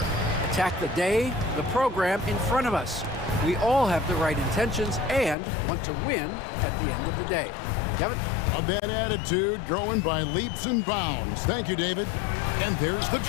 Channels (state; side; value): drops out; right; at 5.4 s